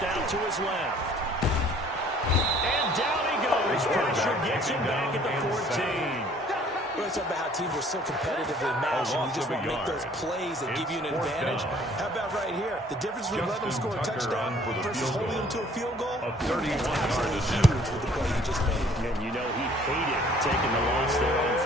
out to his left. And down he goes. Pressure gets him back at the 14. We're talking about how teams are so competitively matched, and you just want to make those plays that give you an advantage. How about right here? The difference between letting them score a touchdown versus holding them to a field goal? It's absolutely huge with the play he just made. And you know he hated taking the loss there on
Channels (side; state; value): both; normal; correlation 0.56